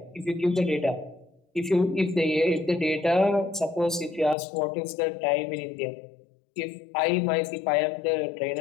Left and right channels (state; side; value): drops out; right; at 4.4 s